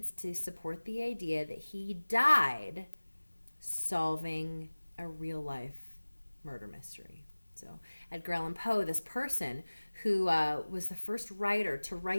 to support the idea that he died solving a real life murder mystery. So Edgar Allan Poe, this person who was the first writer to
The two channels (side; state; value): both; inverted; correlation -1.00